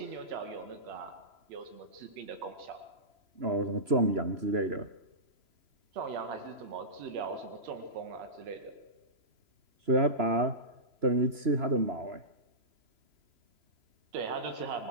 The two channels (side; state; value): left; late; 3.0 ms